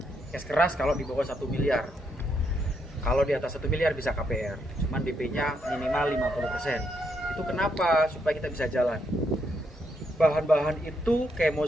Cash keras kalau di bawah 1 miliar. Kalau di atas 1 miliar bisa KPR, cuman DP-nya minimal 50%. Itu kenapa? Supaya kita bisa jalan. Bahan-bahan itu kayak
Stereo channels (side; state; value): both; normal; correlation 0.77